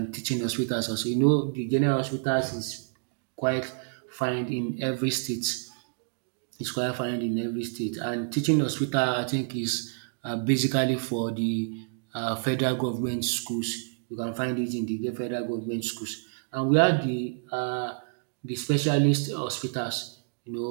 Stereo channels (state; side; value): silent; left; digital silence